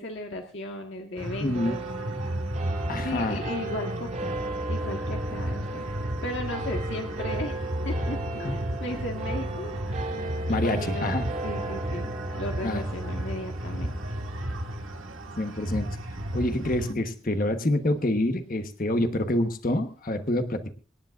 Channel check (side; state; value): both; normal; correlation 0.65